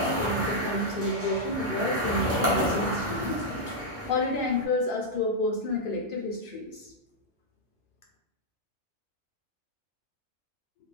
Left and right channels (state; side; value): normal; both; correlation -0.05